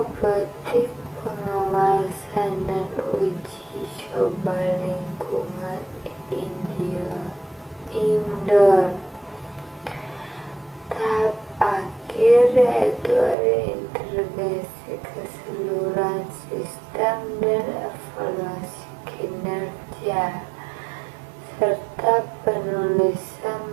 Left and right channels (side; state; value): left; drops out; at 13.4 s